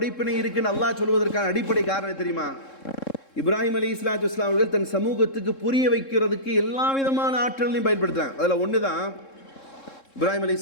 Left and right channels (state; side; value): late; right; 3.7 ms